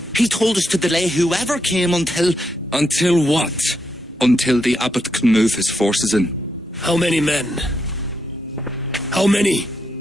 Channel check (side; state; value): both; normal; correlation 0.81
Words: He told us to delay whoever came until... Until what? Until the abbot can move his forces in. How many men? How many?